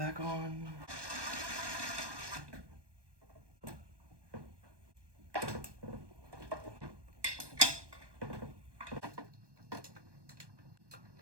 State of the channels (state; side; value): late; left; 1.2 ms